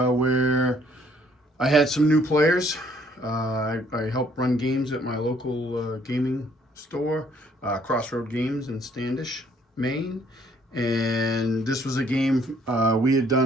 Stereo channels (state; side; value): normal; both; correlation 0.64